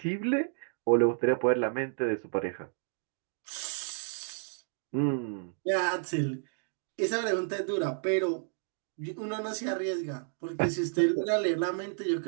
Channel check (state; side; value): silent; left; digital silence